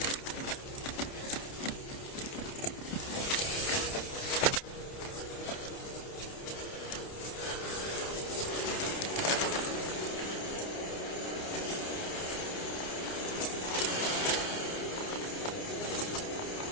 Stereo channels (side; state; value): right; late; 29 ms